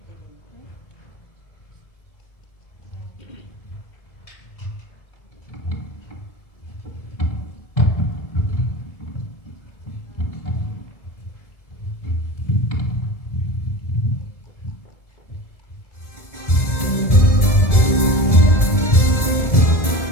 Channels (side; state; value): right; late; 2.0 ms